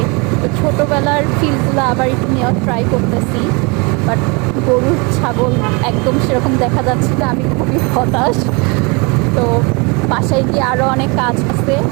তো ছোটোবেলার ফিলগুলো আবার একটু নেওয়ার ট্রাই করতেছি, বাট গরু ছাগল একদম সেরকম দেখা যাচ্ছে না। আমি খুবই হতাশ। তো বাসায় গিয়ে আরও অনেক কাজ আছে।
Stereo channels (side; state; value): left; quieter; 29.7 dB